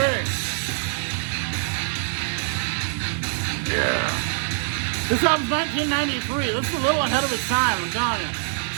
Yeah. This album's 1993. This is a little ahead of its time, I'm telling you.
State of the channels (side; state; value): left; silent; 60 dB below the other